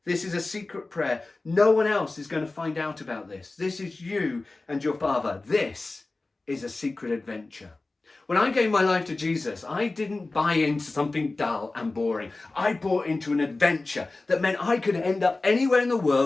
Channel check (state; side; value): quieter; right; 3.3 dB